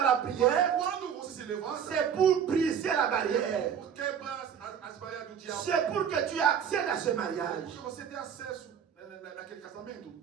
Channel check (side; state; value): left; quieter; 8.1 dB